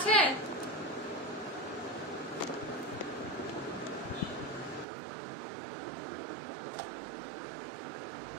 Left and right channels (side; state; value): left; drops out; at 4.9 s